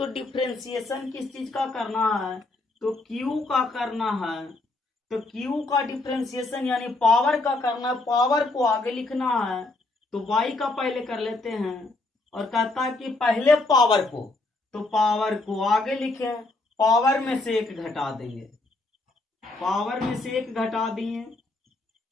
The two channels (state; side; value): quieter; right; 3.1 dB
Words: डिफ्रेंसिएशन किस चीज का करना है तो क्यू का करना है, तो क्यू का डिफ्रेंसिएशन यानी पावर का करना है, पावर को आगे लिखना है तो y का पहले कर लेते हैं, और कहता है कि पहले पावर को, तो पावर को आगे लिखे, पावर में से एक घटा देंगे, पावर में से एक घटा दिए।